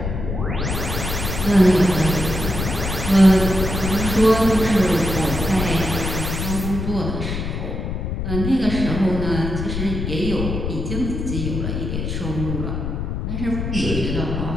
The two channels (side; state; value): left; noise; rumble, 4 dB below the sound